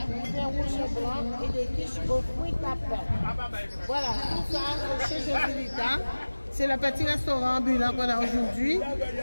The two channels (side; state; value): both; inverted; correlation -1.00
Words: vin rouge et blanc et des quiches aux fruits à pain. Voilà, tout ça, c'est chez Josilita. C'est le petit restaurant ambulant qu'on a aujourd'hui,